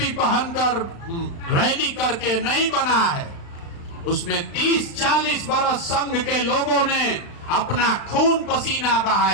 पहनकर रैली करके नहीं बना है, उसमें 30-40 बरस संघ के लोगों ने अपना खून पसीना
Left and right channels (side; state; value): right; late; 35 ms